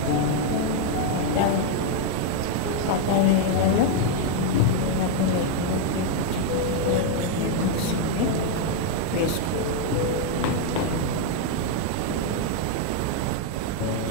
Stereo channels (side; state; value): both; different; correlation 0.01